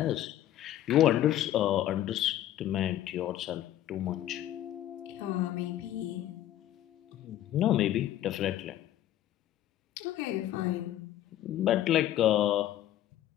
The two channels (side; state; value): right; quieter; 12.8 dB